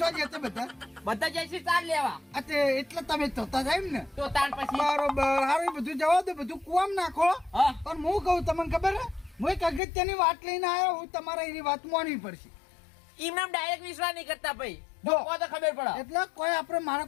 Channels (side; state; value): right; drops out; at 9.8 s